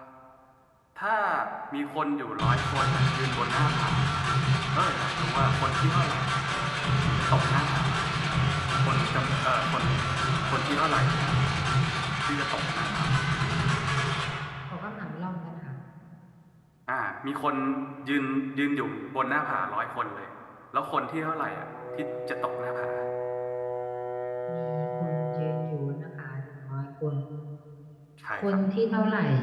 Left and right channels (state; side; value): identical; both; correlation 1.00